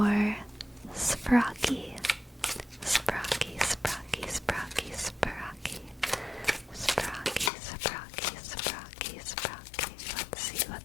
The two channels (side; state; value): right; drops out; at 7.5 s